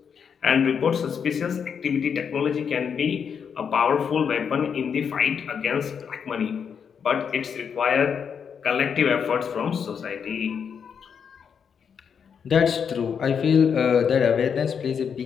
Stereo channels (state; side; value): quieter; right; 7.0 dB